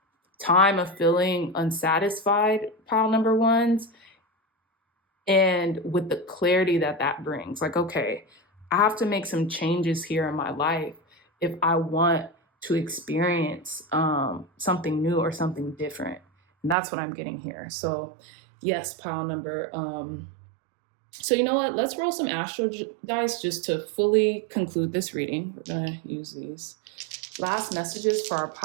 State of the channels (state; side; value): drops out; left; at 16.8 s